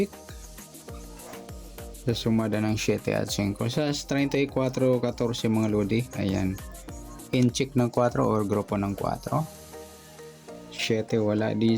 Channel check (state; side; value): identical; both; correlation 1.00